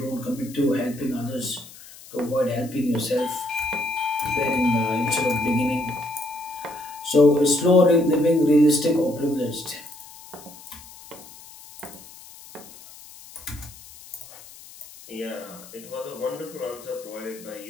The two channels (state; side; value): noise; left; hiss, 19 dB below the sound